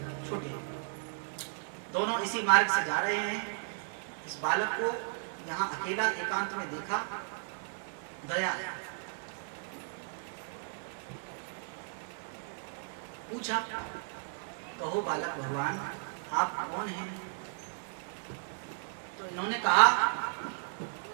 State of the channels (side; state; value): left; silent; digital silence